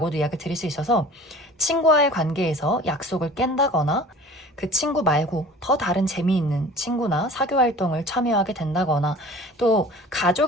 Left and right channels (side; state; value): both; normal; correlation 0.44